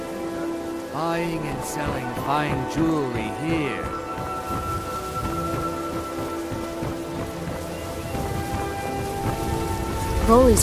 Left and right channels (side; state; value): both; identical; correlation 1.00